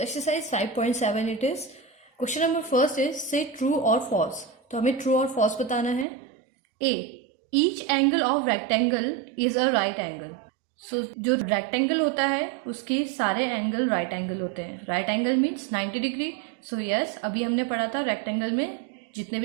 exercise 5.7 it is question number first is से ट्रू और फॉल्स. तो हमें ट्रू और फॉल्स बताना है. A, each angle of rectangle is a right angle. So जो रेक्टेंगल होता है उसके सारे एंगल राइट एंगल होते हैं. Right angle means 90 degree. So yes, अभी हमने पढ़ा था रेक्टेंगल में जितने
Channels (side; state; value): left; drops out; at 6.1 s